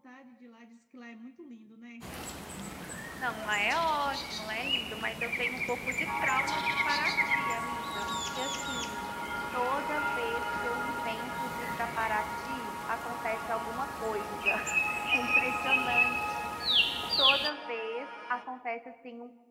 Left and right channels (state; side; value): identical; both; correlation 1.00